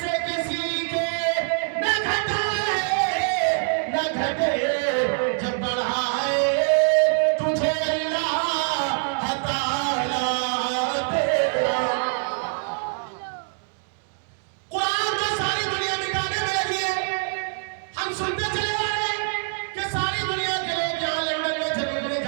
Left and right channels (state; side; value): silent; left; 58 dB below the other